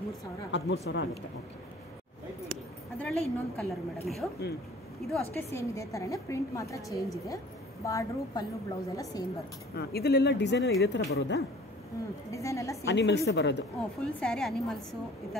13,000 ಆಗುತ್ತೆ. ಓಕೆ. ಅದರಲ್ಲೇ ಇನ್ನೊಂದು ಕಲರ್ ಮೇಡಮ್. ಇದು ಅಷ್ಟೇ ಸೇಮ್ ಇದೆ ತರನೇ, ಪ್ರಿಂಟ್ ಮಾತ್ರ ಚೇಂಜ್ ಇದೆ. ಬಾರ್ಡ್ರು ಪಲ್ಲು ಬ್ಲೌಸ್ ಎಲ್ಲ ಸೇಮ್ ಬರುತ್ತೆ. ಇದೆಲ್ಲ ಡಿಸೈನ್ ಇದೇ ತರ ಬರೋದಾ? ಡಿಸೈನ್ ಎಲ್ಲ ಸೇಮ್. ಅನಿಮಲ್ಸ್ ಬರೋದು? ಫುಲ್ ಸ್ಯಾರಿ ಅನಿಮಲ್ಸ್, ಈ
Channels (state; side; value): normal; both; correlation 0.49